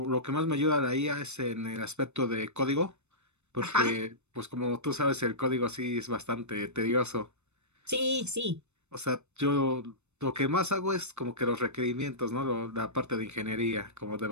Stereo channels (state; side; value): late; left; 0.82 ms